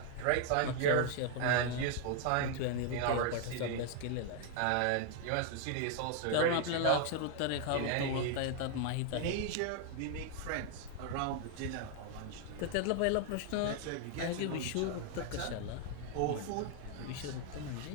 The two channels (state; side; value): different; both; correlation 0.00